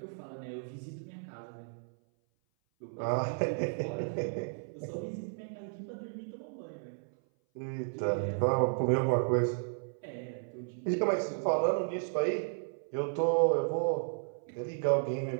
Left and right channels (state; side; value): silent; left; 55 dB below the other